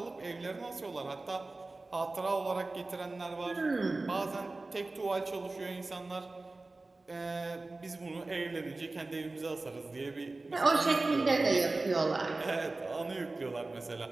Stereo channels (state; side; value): quieter; left; 3.2 dB